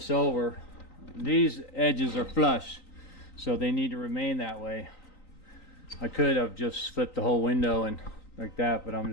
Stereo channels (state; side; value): late; right; 3.9 ms